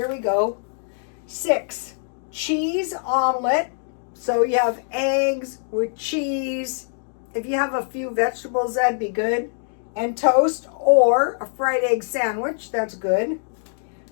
we go. 6, cheese omelet. So you have eggs with cheese. If you have a few vegetables, that'd be good. And toast or a fried egg sandwich, that's good.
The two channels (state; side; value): silent; right; digital silence